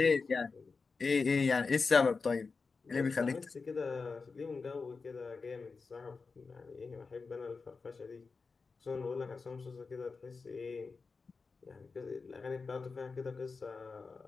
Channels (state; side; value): quieter; right; 4.5 dB